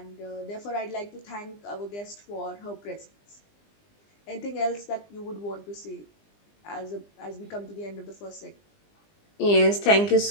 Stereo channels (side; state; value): right; late; 20 ms